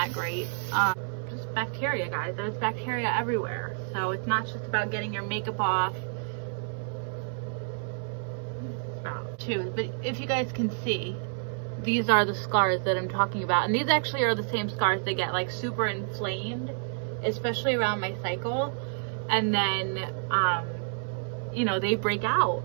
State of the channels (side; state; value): left; silent; 59 dB below the other